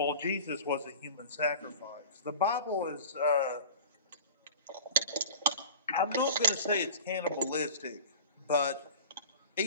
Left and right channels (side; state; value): both; inverted; correlation -0.38